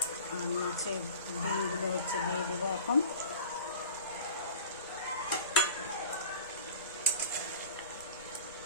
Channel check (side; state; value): both; inverted; correlation -0.40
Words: আর মাছের ডিমগুলো হচ্ছে দিয়ে দেবো এখন।